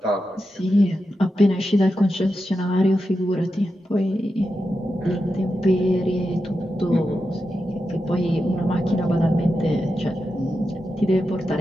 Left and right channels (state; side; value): normal; both; correlation 0.89